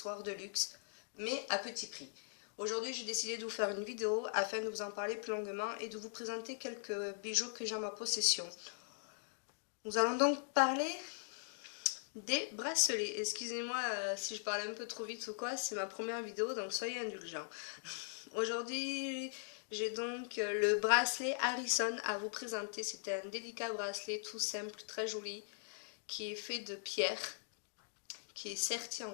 de luxe, mais à petit prix. Aujourd'hui, j'ai décidé de vous faire une vidéo afin de vous en parler plus longuement et de vous présenter quelques bijoux que j'ai en ma possession. Nous allons donc parler des bracelets. Excusez-moi si je parle un peu trop vite ou quoi, c'est ma première vidéo donc soyez indulgents. Aujourd'hui j'ai donc le bracelet Harrison à vous présenter. C'est un délicat bracelet tout simple, très joli, qui est fait de pierre, qui est serti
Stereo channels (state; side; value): silent; right; digital silence